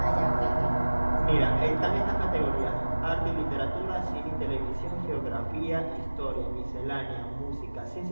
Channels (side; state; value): both; inverted; correlation -1.00